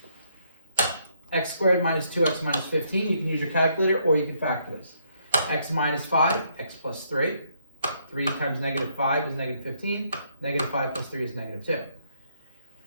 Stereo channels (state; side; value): inverted; both; correlation -0.72